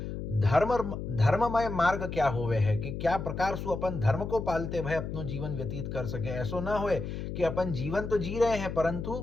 धर्ममय मार्ग क्या होवे है, कि क्या प्रकार सु अपन धर्म को पालते भय अपनो जीवन व्यतीत कर सके। ऐसो ना होए कि अपन जीवन तो जी रहे हैं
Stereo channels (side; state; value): left; noise; hum, 6 dB below the sound